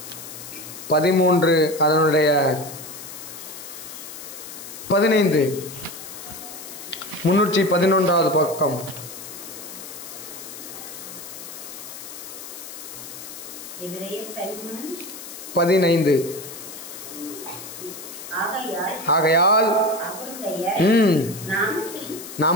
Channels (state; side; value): noise; left; hiss, 12 dB below the sound